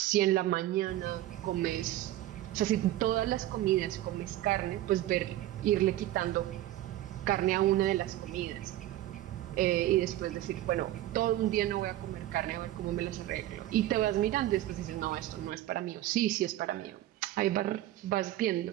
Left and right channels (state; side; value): quieter; left; 14.3 dB